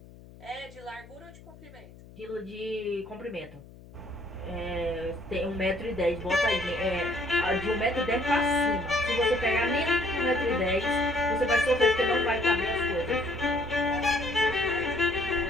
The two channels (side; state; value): left; noise; hum, 20 dB below the sound